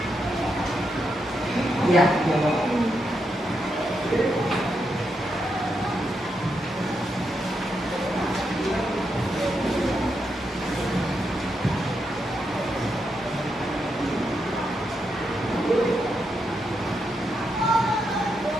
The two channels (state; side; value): normal; both; correlation 0.83